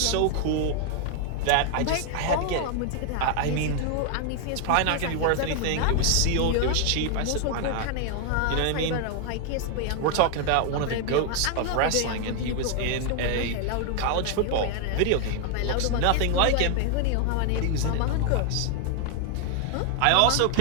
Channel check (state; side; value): different; both; correlation 0.00